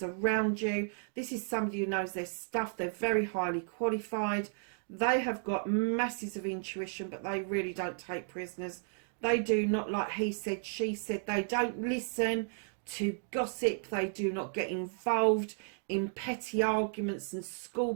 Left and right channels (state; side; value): silent; left; digital silence